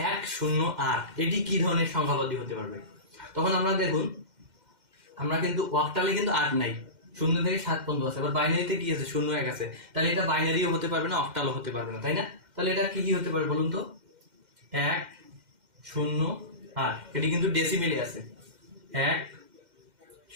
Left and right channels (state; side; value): late; left; 2.1 ms